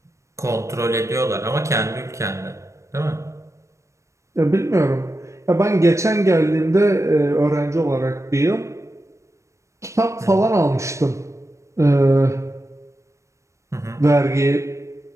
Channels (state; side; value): late; left; 0.15 ms